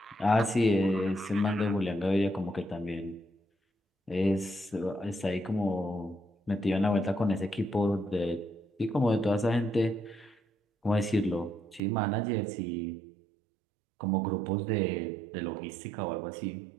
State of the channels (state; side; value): drops out; left; at 11.8 s